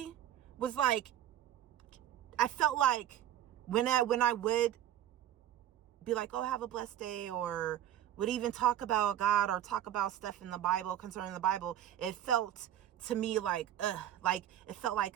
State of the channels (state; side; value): quieter; left; 11.5 dB